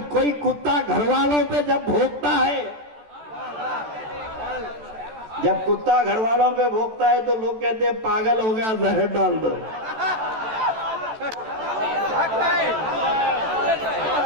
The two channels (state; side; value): late; left; 14 ms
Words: کوئی کتا گھر والوں پہ جب بھونکتا ہے، جب کتا گھر والوں پہ بھونکتا ہے تو لوگ کہتے ہیں پاگل ہو گیا، زہر ڈال دو.